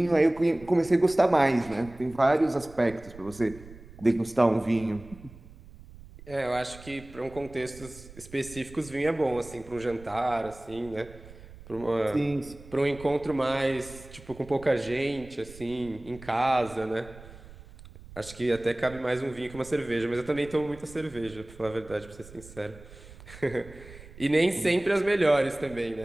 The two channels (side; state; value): right; noise; rumble, 19 dB below the sound